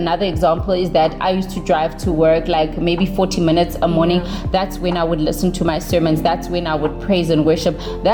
example is that I used to drive to work like maybe 40 minutes a morning. That's when I would listen to my sermons. That's when I would praise and worship.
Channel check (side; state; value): both; identical; correlation 1.00